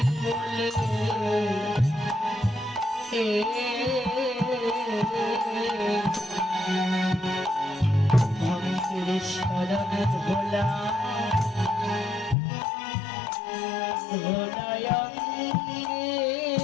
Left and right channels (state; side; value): drops out; right; at 12.4 s